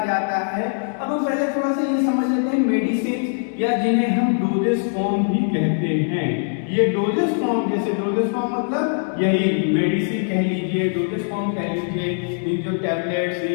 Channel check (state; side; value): silent; right; digital silence